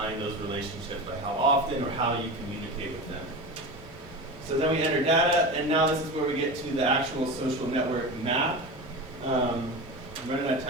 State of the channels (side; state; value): both; normal; correlation 0.26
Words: those relationships, like how often or how you communicate with them. So then we enter data, and now this is where we get to the actual social network map. I'm running out of